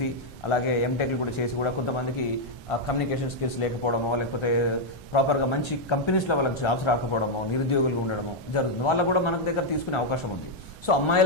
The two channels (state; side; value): normal; both; correlation -0.01